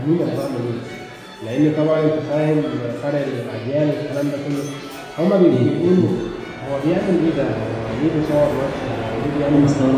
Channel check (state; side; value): identical; both; correlation 1.00